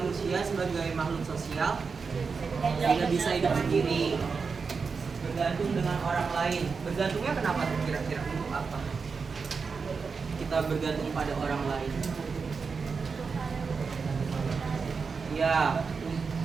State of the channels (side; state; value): left; quieter; 5.1 dB